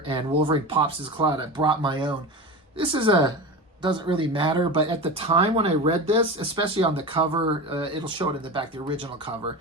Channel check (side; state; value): both; normal; correlation 0.27